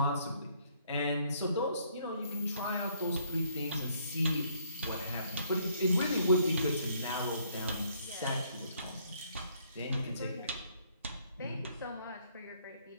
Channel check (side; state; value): both; inverted; correlation -0.67